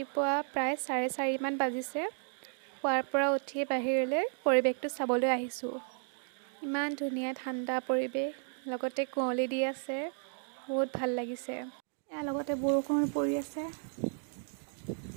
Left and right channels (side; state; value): left; silent; 55 dB below the other